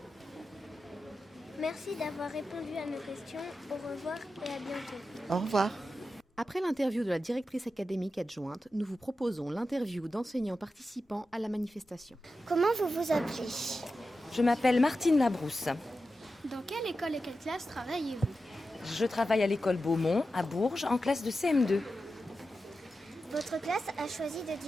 Merci d'avoir répondu à nos questions. Au revoir et à bientôt. Au revoir. Après l'interview de la directrice académique adjointe, nous vous proposons l'interview d'enseignants participants à la manifestation. Comment vous vous appelez? Je m'appelle Martine Labrousse. Dans quelle école et quelle classe travaillez-vous? Je travaille à l'école Beaumont, à Bourges, en classe de CM2. Votre classe a choisi de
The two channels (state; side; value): normal; both; correlation 0.91